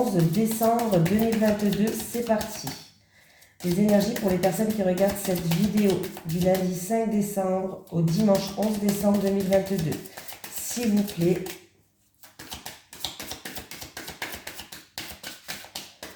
décembre 2022. C'est parti. Les énergies pour les personnes qui regardent cette vidéo du lundi 5 décembre au dimanche 11 décembre 2022. S'il vous plaît.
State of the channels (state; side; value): identical; both; correlation 1.00